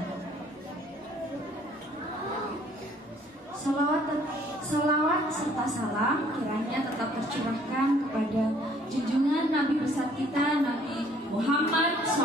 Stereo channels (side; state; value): both; normal; correlation 0.60